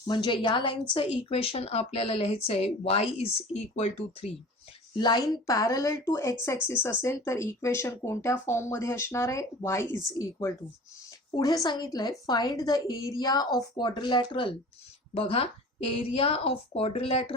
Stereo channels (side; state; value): both; normal; correlation 0.41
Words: म्हणजे या लाईनचं इक्वेशन आपल्याला लिहायचं आहे y is equal to 3. Line parallel to x axis असेल तर इक्वेशन कोणत्या फॉर्ममध्ये असणार आहे? Y is equal to. पुढे सांगितलंय find the area of quadrilateral. बघा, area of